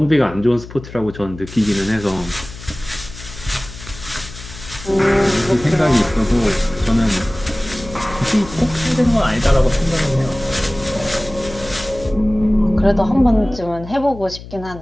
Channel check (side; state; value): left; noise; hum, 15 dB below the sound